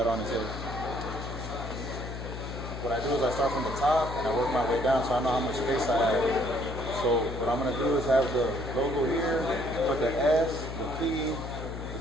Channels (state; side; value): noise; left; hum, 7 dB below the sound